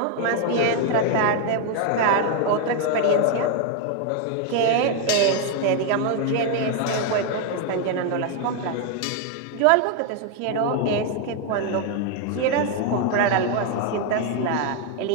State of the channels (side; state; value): both; different; correlation 0.01